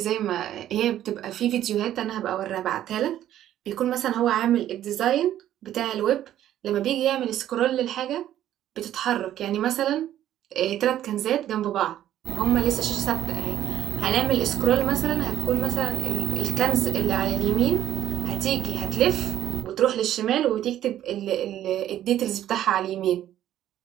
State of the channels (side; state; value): left; quieter; 12.1 dB